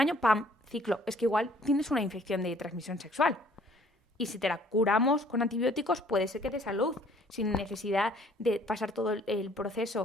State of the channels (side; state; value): both; normal; correlation 0.58